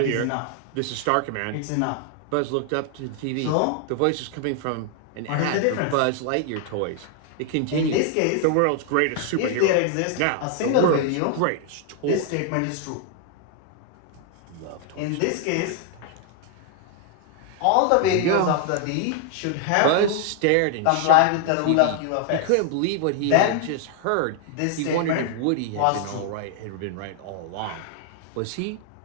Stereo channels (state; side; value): different; both; correlation 0.00